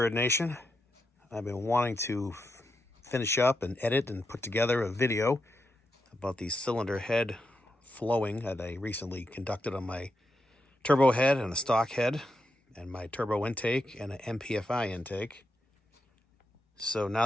Nation. I've been wanting to finish up and edit and put together a video about the cylinder head flowing that I recently conducted on my turbo head and a stock head and my turbo intake and an MPFI intake. So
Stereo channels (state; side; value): normal; both; correlation 0.85